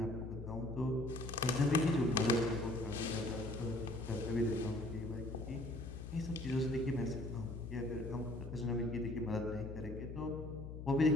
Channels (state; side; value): noise; left; hum, 8 dB below the sound